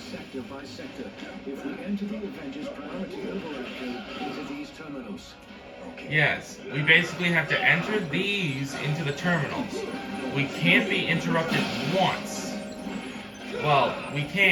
sector by sector if we enter the Avengers priority override code into these terminals. yes, we basically have to enter these into the terminals. We can't be interrupted once. Well, we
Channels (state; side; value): identical; both; correlation 1.00